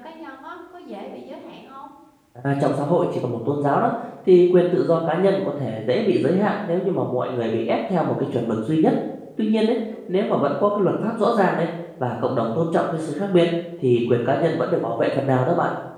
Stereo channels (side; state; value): both; identical; correlation 1.00